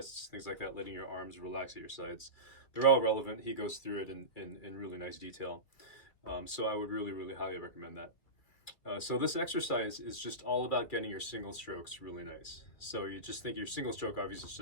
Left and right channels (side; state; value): right; late; 2.1 ms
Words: things like that, letting your arms relax at your sides. They're all relevant. He goes through it in really nice detail. So I would really, really highly recommend that. So this exercise is just all about getting your single strokes really nice. So you just think your single stroke obviously